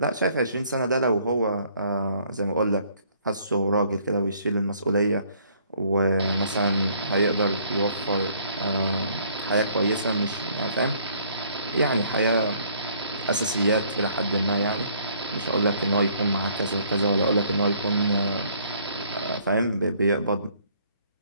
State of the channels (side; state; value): both; inverted; correlation -0.62